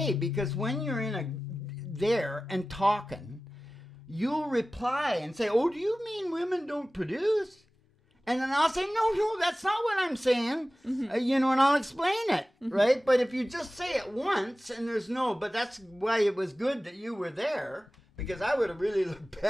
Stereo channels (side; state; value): both; normal; correlation 0.96